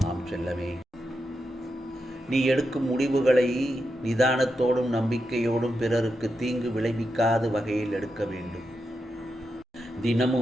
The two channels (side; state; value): both; normal; correlation 0.87